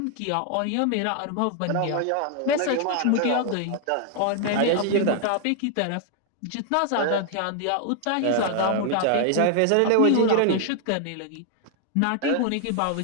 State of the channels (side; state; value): both; different; correlation 0.00